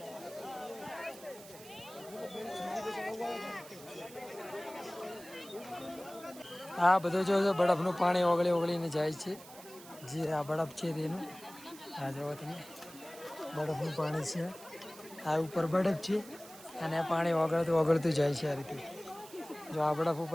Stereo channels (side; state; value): right; noise; hiss, 18 dB below the sound